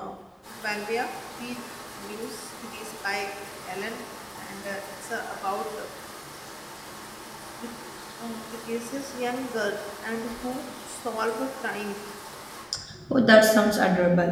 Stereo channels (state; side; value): identical; both; correlation 1.00